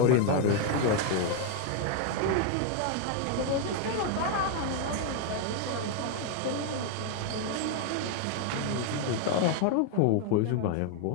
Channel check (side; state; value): both; different; correlation 0.00